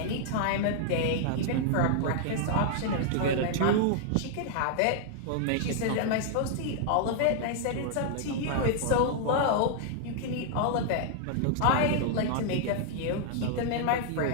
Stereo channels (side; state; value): both; different; correlation -0.01